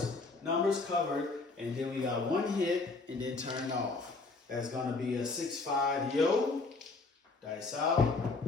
numbers covered. And then we got one hit and then turn off. That's going to be a 6-5 yo. Dice out.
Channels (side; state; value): right; quieter; 3.8 dB